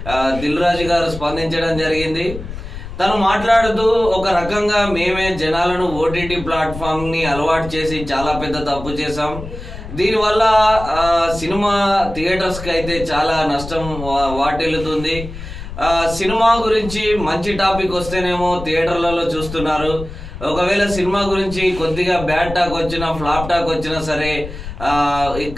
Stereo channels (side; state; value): left; noise; rumble, 10 dB below the sound